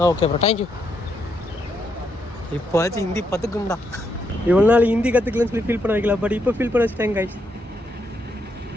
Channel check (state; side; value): normal; both; correlation 0.78